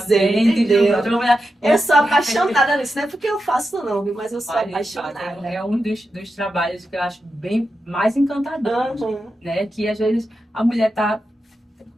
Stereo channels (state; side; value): normal; both; correlation 0.89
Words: entendeu? Eu sou apaixonada nisso. Não é porque eu faço não, viu? Mas eu sou apaixonada. É um dos trabalhos que eu acho bem mais encantador, né? Que às vezes a mulher tá